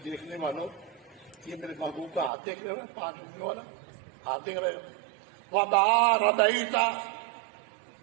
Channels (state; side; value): drops out; left; at 2.3 s